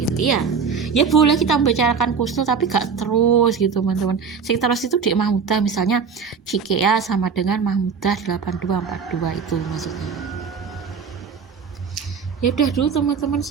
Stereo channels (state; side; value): quieter; left; 6.0 dB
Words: Iya. Ya boleh kita membicarakan Kusnul tapi gak terus gitu, teman-teman. Sing terus itu Dek Mahmudah, misalnya Cikea sama dengan Mahmudah 8242 itu maksudnya. Ya udah dulu teman-teman,